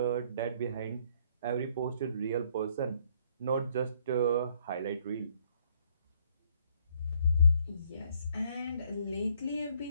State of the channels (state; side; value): inverted; both; correlation -0.65